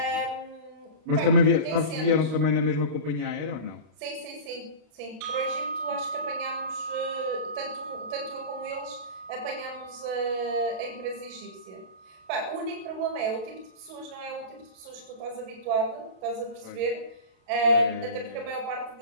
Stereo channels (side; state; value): left; late; 32 ms